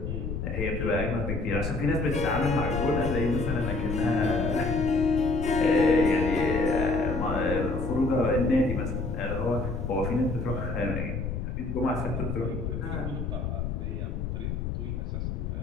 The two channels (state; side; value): noise; left; rumble, 3 dB below the sound